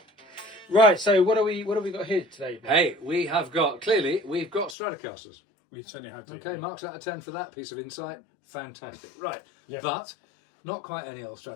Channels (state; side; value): drops out; right; at 4.8 s